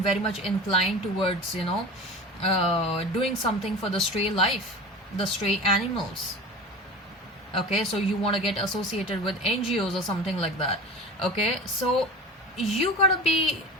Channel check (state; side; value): normal; both; correlation 0.34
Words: very much inclined towards doing something for the stray life, the stray animals. Okay, so you want to get associated with NGOs or something like that. Okay, so you gotta be,